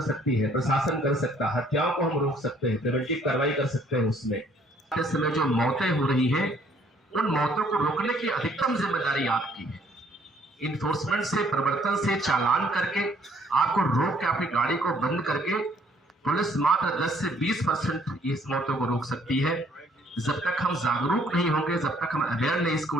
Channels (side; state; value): both; normal; correlation 0.63